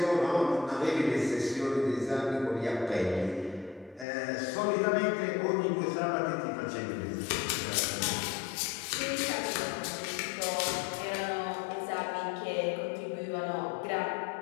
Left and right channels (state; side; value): drops out; right; at 4.0 s